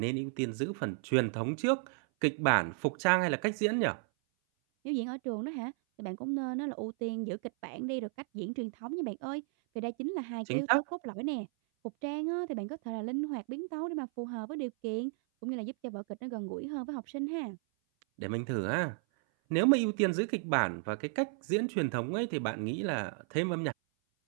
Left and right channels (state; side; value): silent; left; 55 dB below the other